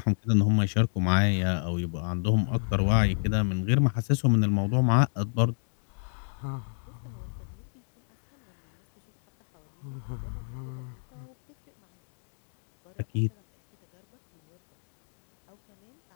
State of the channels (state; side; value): silent; right; digital silence